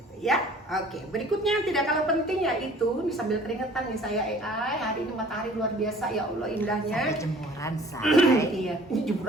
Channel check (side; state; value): both; normal; correlation 0.51